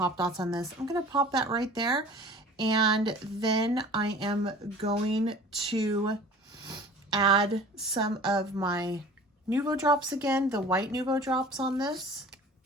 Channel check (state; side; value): normal; both; correlation 0.44